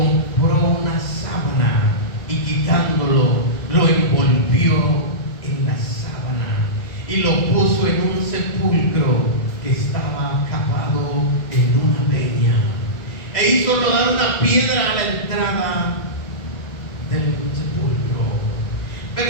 una sábana y quitándolo, lo envolvió en la sábana y lo puso en un sepulcro que estaba cavado en una peña, e hizo rodar una piedra a la entrada del sepulcro.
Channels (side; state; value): right; late; 2.4 ms